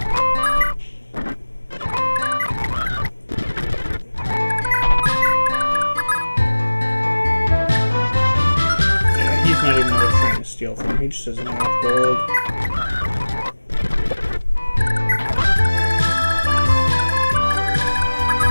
He's not even worth trying to steal from him. He just doesn't have enough gold.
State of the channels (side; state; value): both; inverted; correlation -1.00